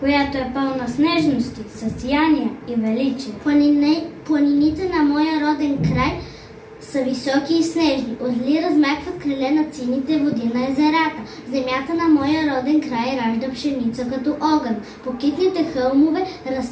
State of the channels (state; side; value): identical; both; correlation 1.00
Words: е пълна с нежности, със сияния и величие. Планините на моя роден край са високи и снежни. Отли размахват криле над сините води на езерата. Земята на моя роден край ражда пшеница като огън. По китните хълмове